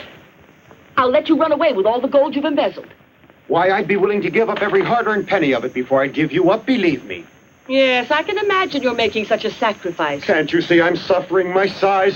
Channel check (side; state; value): both; identical; correlation 1.00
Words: I'll let you run away with all the gold you've embezzled. Why, I'd be willing to give up every hard-earned penny of it before I'd give you up, believe me. Yes, I can imagine you're making such a sacrifice. Can't you see I'm suffering my sighs